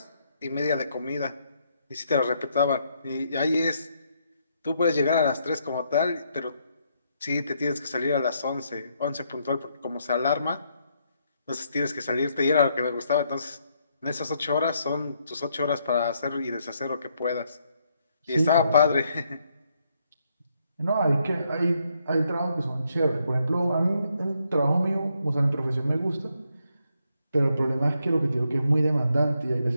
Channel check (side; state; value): both; inverted; correlation -0.75